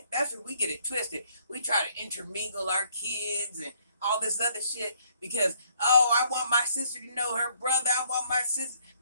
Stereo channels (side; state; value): both; inverted; correlation -0.66